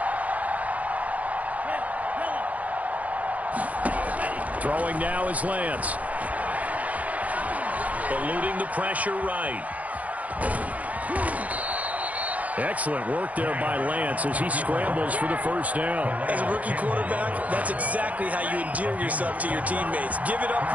Throwing now is Lance. Eluding the pressure right. Excellent work there by Lance as he scrambles for the first down. As a rookie quarterback, that's exactly how you endear yourself to your teammates. Give it up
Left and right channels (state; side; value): late; left; 0.071 ms